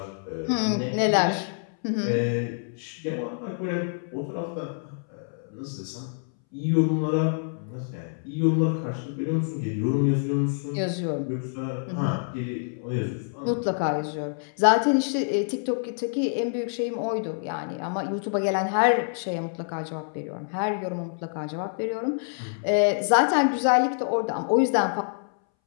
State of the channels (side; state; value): right; silent; 61 dB below the other